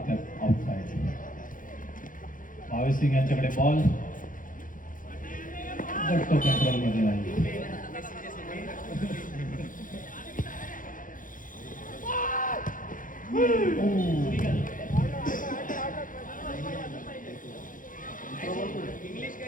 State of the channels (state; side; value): late; right; 0.39 ms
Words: आउटसाइड. भावेश सिंग यांच्याकडे बॉल, बट तो कंट्रोलमध्ये नाही.